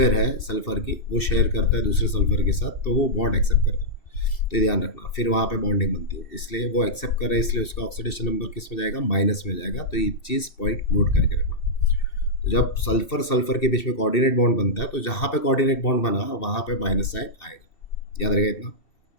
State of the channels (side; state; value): right; late; 2.7 ms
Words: है सल्फर की वो शेयर करता है दूसरे सल्फर के साथ, तो वो बॉन्ड एक्सेप्ट करता है। तो ये ध्यान रखना, फिर वहाँ पे बॉन्डिंग बनती है, इसलिए वो एक्सेप्ट कर रहा है, इसलिए उसका ऑक्सीडेशन नंबर किस में जाएगा, माइनस में जाएगा। तो ये चीज़ पॉइंट नोट करके रखना। तो जब सल्फर सल्फर के बीच में कोऑर्डिनेट बॉन्ड बनता है तो जहाँ पे कोऑर्डिनेट बॉन्ड बना वहाँ पे माइनस साइन आएगा, याद रहेगा इतना,